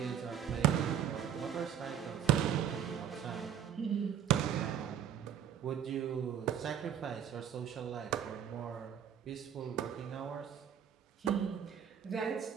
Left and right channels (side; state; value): left; quieter; 9.2 dB